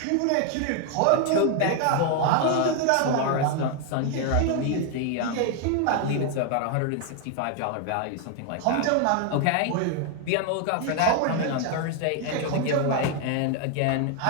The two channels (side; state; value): both; different; correlation 0.01